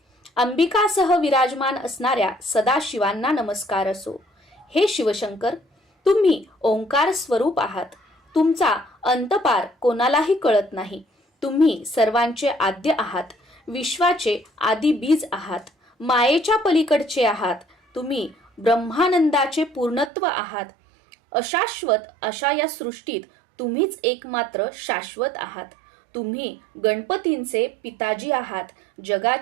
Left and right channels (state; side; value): drops out; left; at 20.1 s